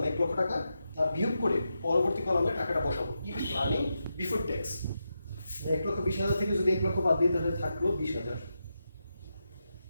1 লক্ষ টাকা, তা বিয়োগ করে পরবর্তী কলামে টাকাটা বসাবো। ইবিটি আর্নিং বিফোর ট্যাক্স, 1,20,000 থেকে যদি 1 লক্ষ বাদ দিই তাহলে থাকলো 20,000।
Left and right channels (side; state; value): both; inverted; correlation -0.87